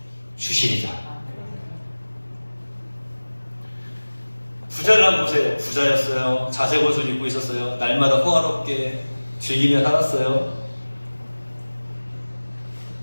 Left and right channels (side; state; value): both; inverted; correlation -1.00